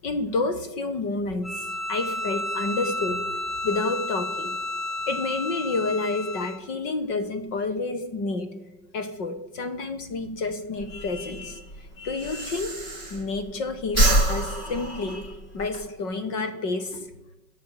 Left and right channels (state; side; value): late; right; 5.2 ms